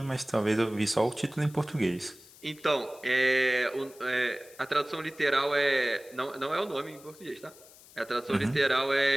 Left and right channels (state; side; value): noise; left; hiss, 23 dB below the sound